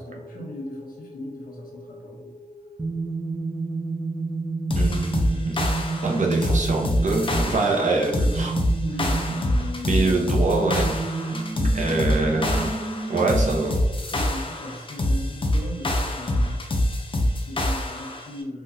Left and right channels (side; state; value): both; normal; correlation 0.77